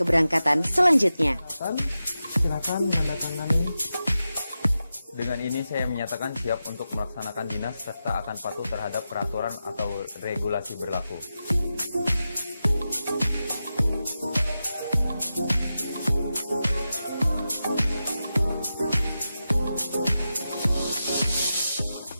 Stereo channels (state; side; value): inverted; both; correlation -0.91